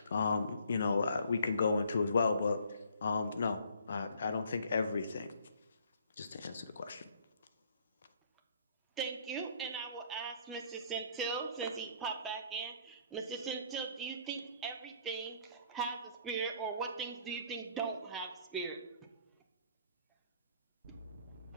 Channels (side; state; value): both; inverted; correlation -0.61